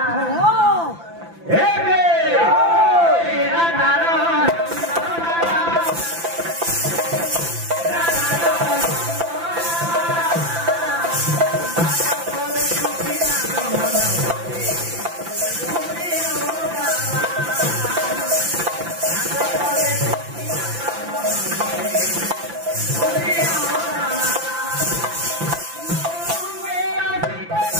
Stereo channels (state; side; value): late; left; 5.9 ms